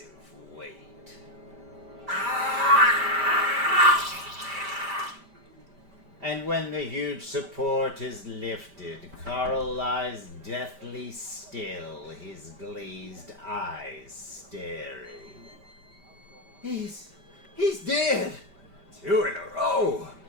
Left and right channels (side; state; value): left; late; 5.1 ms